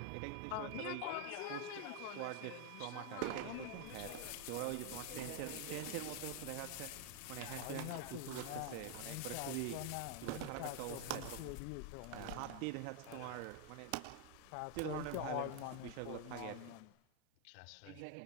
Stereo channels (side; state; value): both; different; correlation 0.00